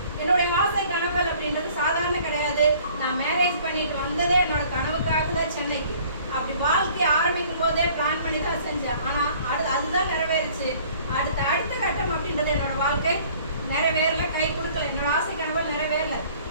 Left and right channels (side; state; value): both; inverted; correlation -0.54